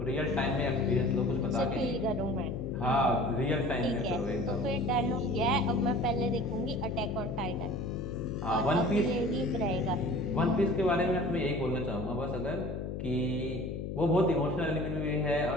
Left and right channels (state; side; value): noise; left; hum, 5 dB below the sound